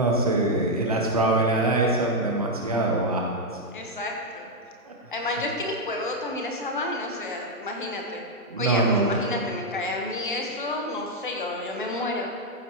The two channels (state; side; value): normal; both; correlation 0.00